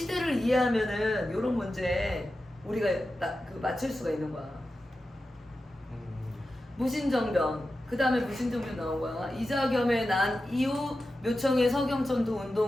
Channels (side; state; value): both; normal; correlation 0.92